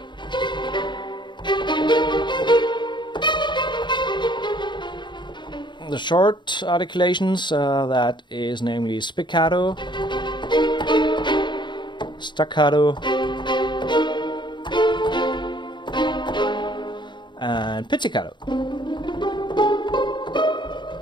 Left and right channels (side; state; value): right; late; 0.22 ms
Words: the short articulations, that is namely spiccato, staccato, and pizzicato.